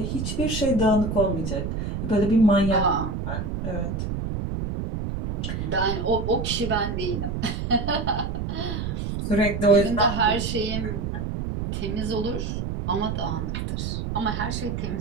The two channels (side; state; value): right; noise; rumble, 3 dB below the sound